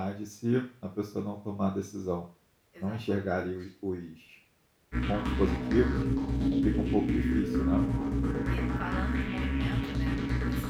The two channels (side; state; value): both; identical; correlation 1.00